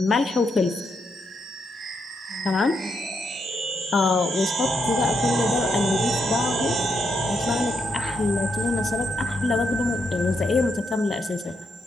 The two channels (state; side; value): normal; both; correlation 0.80